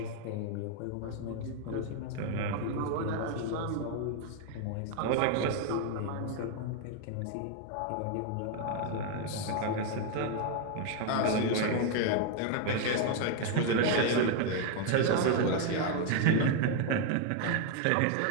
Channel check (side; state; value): both; different; correlation 0.01